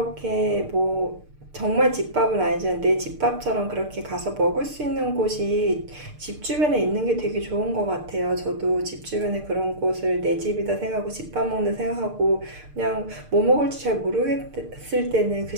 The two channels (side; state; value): left; late; 6.6 ms